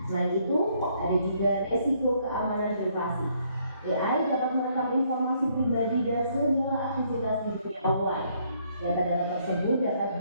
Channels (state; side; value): inverted; both; correlation -0.69